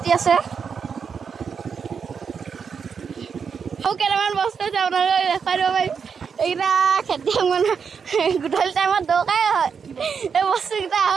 আছে। কেইটামান বস্তু আছে আপোনালোকে দেখাই দিব পাৰিম। এইকেইটা খেতিয়ক মানুহ গধূলি টাইমত দৰকাৰেই হয় এই বস্তুকেইটা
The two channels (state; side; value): quieter; left; 6.3 dB